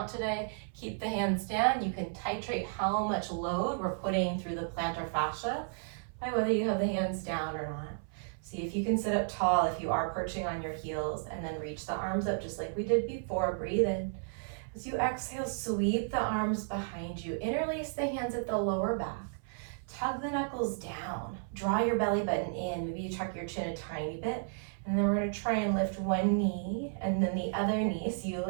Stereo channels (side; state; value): left; silent; 56 dB below the other